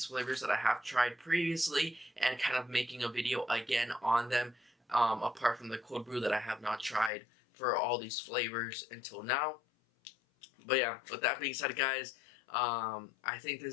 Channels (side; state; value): right; drops out; at 7.1 s